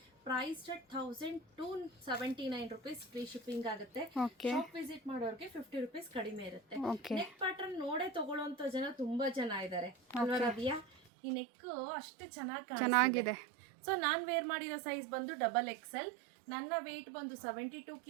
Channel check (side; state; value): left; drops out; at 11.0 s